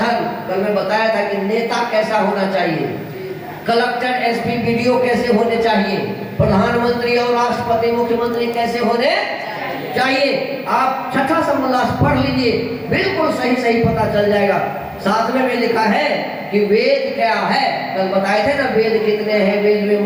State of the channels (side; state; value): both; identical; correlation 1.00